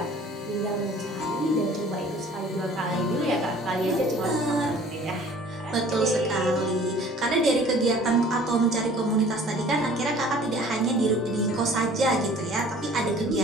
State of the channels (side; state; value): both; normal; correlation 0.50